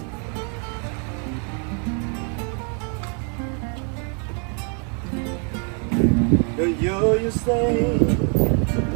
The year you stay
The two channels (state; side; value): quieter; left; 39.7 dB